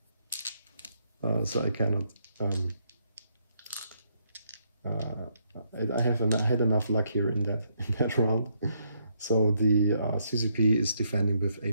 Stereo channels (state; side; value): inverted; both; correlation -0.74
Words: So I cannot. I had enough luck here in that round. So the CCP is defending with a